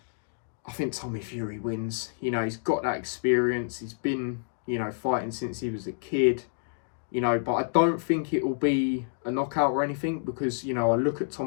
I think Tommy Fury wins. You know, he's got that experience. He's been, you know, fighting since he was a kid. You know, but I don't think it will be a knockout or anything, because, you know, I look at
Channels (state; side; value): silent; right; digital silence